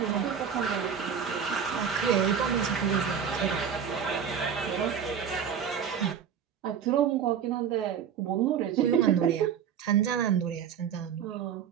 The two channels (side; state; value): left; quieter; 7.9 dB